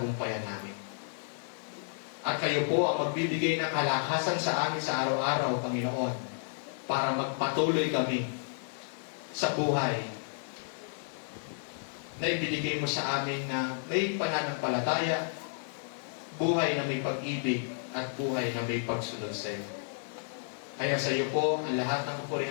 namin. At kayo po ang magbibigay ng kalakasan sa amin sa araw-araw, Panginoon, para magpatuloy kami sa buhay na ibinigay mo sa amin na may pananampalataya, buhay na may pag-ibig, at buhay na may pagsunod sa iyo. Kaya sa iyo po ang lahat ng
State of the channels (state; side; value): silent; right; digital silence